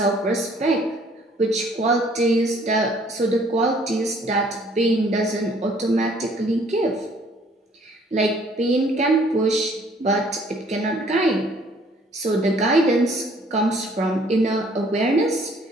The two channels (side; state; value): both; normal; correlation 0.59